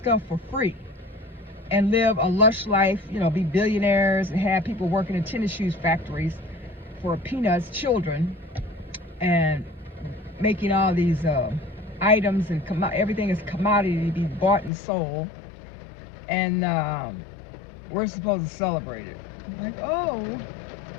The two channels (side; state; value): right; drops out; at 14.7 s